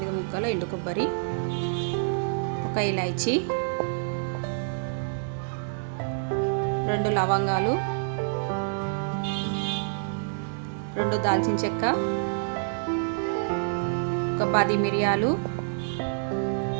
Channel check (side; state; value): left; silent; digital silence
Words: ముక్కలు ఎండు కొబ్బరి, ఒక ఇలాచీ, 2 లవంగాలు, 2 దాల్చిన చెక్క, ఒక 10 మిరియాలు,